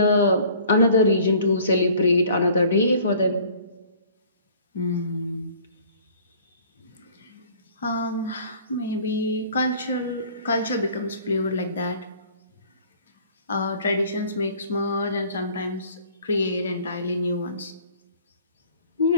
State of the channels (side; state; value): both; inverted; correlation -0.51